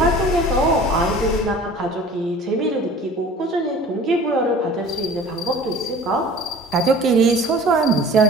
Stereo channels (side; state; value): both; normal; correlation 0.44